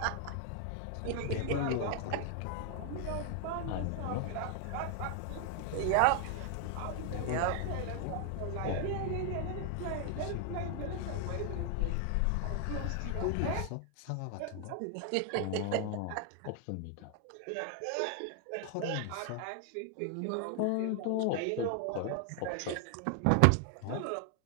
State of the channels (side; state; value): both; different; correlation 0.00